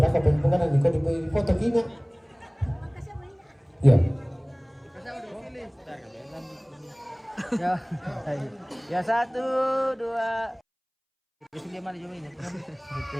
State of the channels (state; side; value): identical; both; correlation 1.00